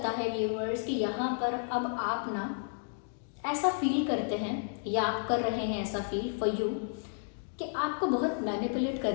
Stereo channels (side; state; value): right; silent; digital silence